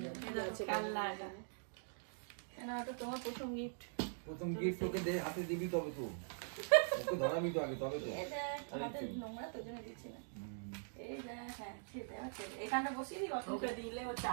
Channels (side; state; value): left; silent; digital silence